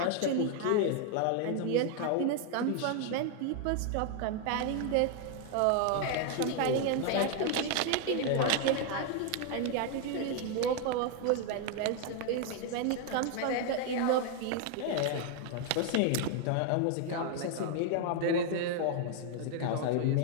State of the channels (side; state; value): both; different; correlation 0.00